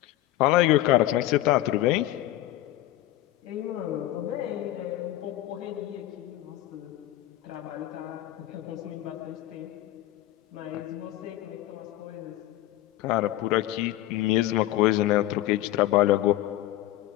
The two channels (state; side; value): quieter; right; 15.2 dB